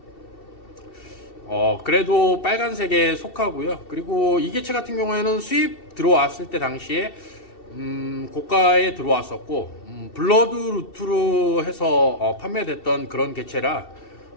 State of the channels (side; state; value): right; late; 2.7 ms